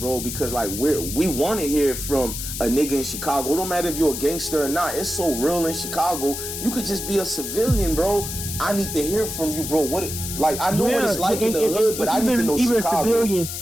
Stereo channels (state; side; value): noise; left; hiss, 6 dB below the sound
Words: because like we want to hear from a nigga in Chicago. It don't matter if you're a gangster or not. It's so real in Chicago. You could just be a civilian, bro. I need to hear from you, bro. I know what it's like in the hood, but I need to know Chicago.